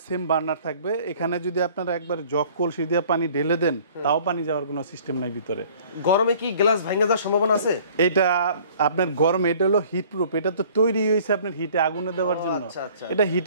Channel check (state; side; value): inverted; both; correlation -0.52